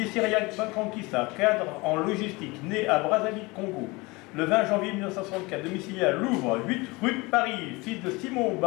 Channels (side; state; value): right; quieter; 24.1 dB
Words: Syriac Banfonkissa, cadre en logistique, né à Brazzaville, Congo. Le 20 janvier 1964, domicilié à Louvre, 8 rue de Paris, fils de Simon